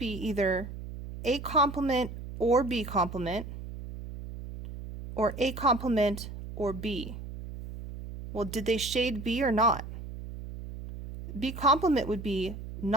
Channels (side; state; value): right; noise; hum, 10 dB below the sound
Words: either A complement or B complement, or A complement or B. Well, did they shade B or not? B complement would be